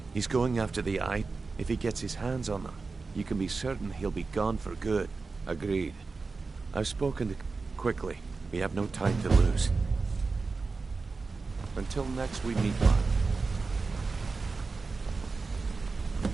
He's going after the eye. If he gets his hands on them, you can be certain he'll be gone for good. Agreed. I've spoken to... Quickly. We have no time to lose. Until next we meet, Mark.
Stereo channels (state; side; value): quieter; left; 4.1 dB